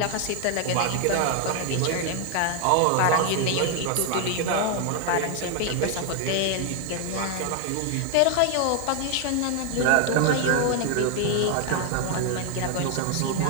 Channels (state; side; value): different; both; correlation 0.00